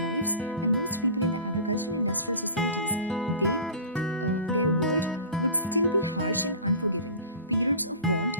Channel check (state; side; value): inverted; both; correlation -0.36